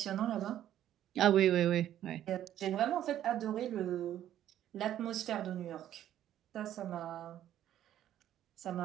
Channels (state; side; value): quieter; left; 11.7 dB